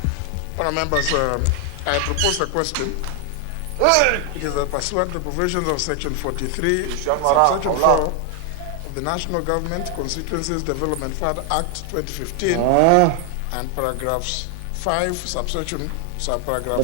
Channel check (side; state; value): both; different; correlation 0.00